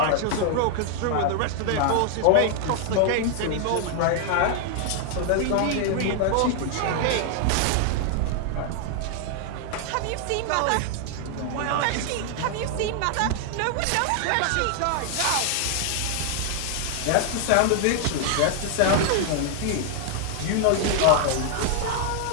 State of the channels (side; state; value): both; different; correlation 0.00